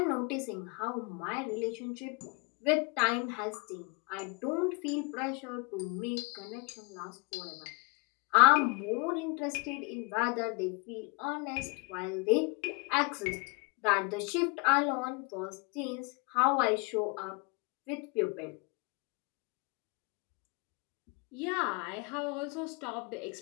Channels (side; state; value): right; quieter; 29.9 dB